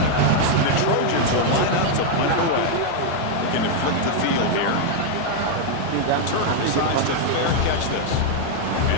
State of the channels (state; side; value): different; both; correlation 0.00